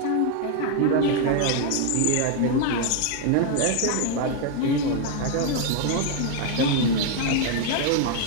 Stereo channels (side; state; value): both; different; correlation 0.00